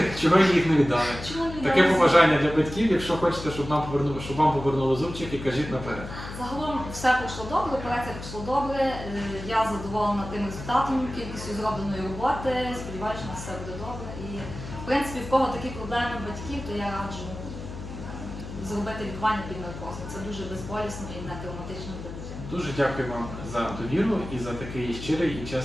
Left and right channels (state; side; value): noise; left; hum, 10 dB below the sound